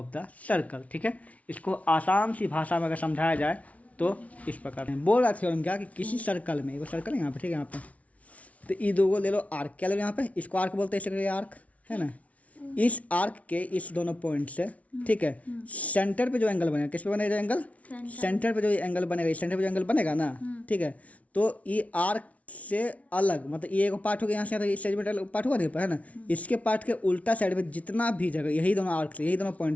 the circle, ठीक है। इसको आसान सी भाषा में अगर समझाया जाए तो इस प्रकार बोल रहा थ्योरम क्या कि किसी सर्कल में, वो सर्कल है यहाँ पे, ठीक है, यहाँ पे, तो ये दो को ले लो आर्क, क्या ले लो यहाँ पे, इसको आर्क बोलते हैं, इसे आर्क है ना। इस आर्क के इस दोनों पॉइंट से, ठीक है, सेंटर पे जो एंगल बनेगा, किस पे बनेगा एंगल, सेंटर पे जो एंगल बनेगा, इस सेंटर पे जो एंगल बनेगा ना, ठीक है, तो ये आर्क से अलग, मतलब ये एक पार्ट हो गया यहाँ से, इस सेगमेंट पार्ट हुआ है ना, इसके पार्ट के उल्टा साइड में जितना भी जगह, यही दोनों आर्क से, यही दोनों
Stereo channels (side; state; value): right; late; 0.067 ms